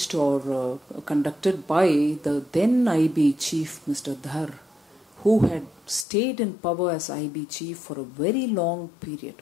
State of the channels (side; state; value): right; drops out; at 6.1 s